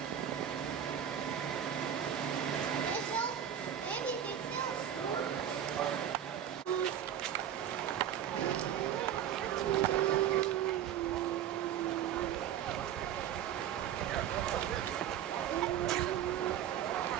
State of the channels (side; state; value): left; quieter; 9.9 dB